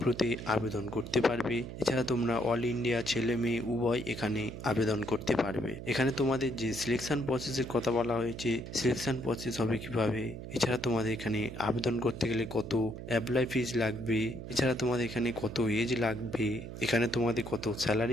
আবেদন করতে পারবে। এছাড়া তোমরা অল ইন্ডিয়া ছেলে মেয়ে উভয় এখানে আবেদন করতে পারবে। এখানে তোমাদের যে সিলেকশন প্রসেসের কথা বলা হয়েছে, সিলেকশন প্রসেস হবে কিভাবে, এছাড়া তোমাদের এখানে আবেদন করতে গেলে কত অ্যাপ্লাই ফিজ লাগবে, এছাড়া তোমাদের এখানে কত এজ লাগবে, এখানে তোমাদের কত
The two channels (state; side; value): noise; right; hum, 10 dB below the sound